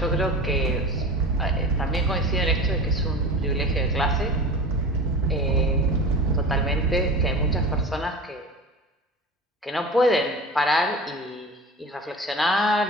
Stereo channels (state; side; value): normal; both; correlation 0.34